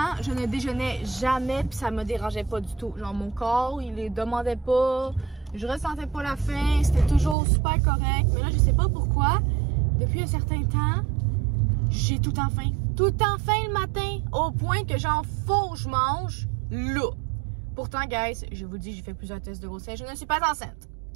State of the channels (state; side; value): drops out; left; at 7.4 s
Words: je ne déjeunais jamais, puis ça me dérangeait pas du tout. Genre, mon corps, il les demandait pas. Je ressentais pas la faim. C'était toujours super correct. Mais là, je sais pas pourquoi. Depuis un certain temps, j'ai tout le temps faim. Tout le temps faim le matin. Au point que genre, faut que je mange là. Pourtant, guys, je vous dis, j'ai fait plusieurs tests de grossesse. Je ne suis pas enceinte.